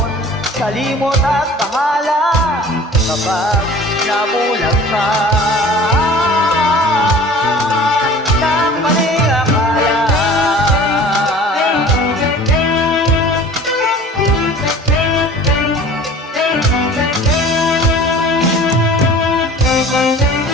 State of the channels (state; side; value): normal; both; correlation 0.44